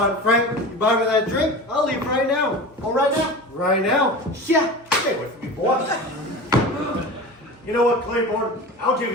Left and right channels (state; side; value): normal; both; correlation 0.32